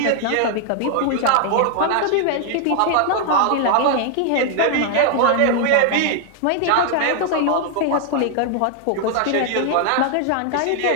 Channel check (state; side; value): different; both; correlation 0.00